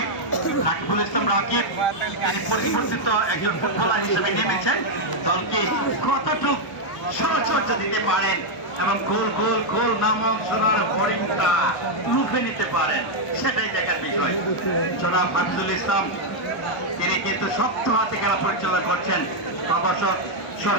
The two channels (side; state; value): right; noise; hum, 30 dB below the sound